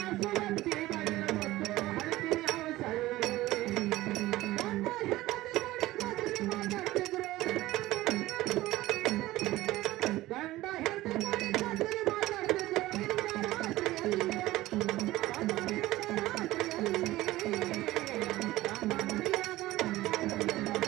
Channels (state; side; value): quieter; left; 17.2 dB